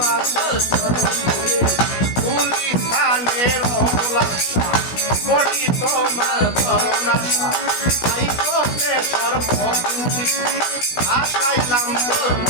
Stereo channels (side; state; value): right; late; 16 ms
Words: গুলিস্তানের অবলাসা বড়ি তোমার করুণাশা আই করতে সর্বতি আশাইলাম তোর